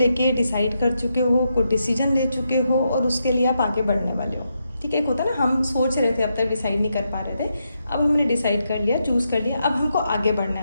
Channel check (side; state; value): both; inverted; correlation -0.83